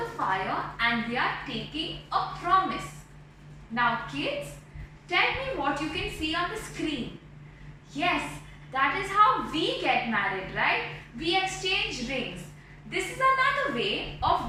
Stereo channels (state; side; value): identical; both; correlation 1.00